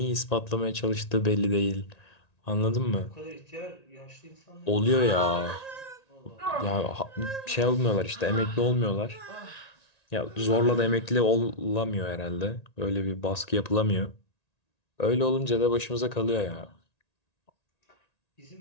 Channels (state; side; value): late; right; 1.9 ms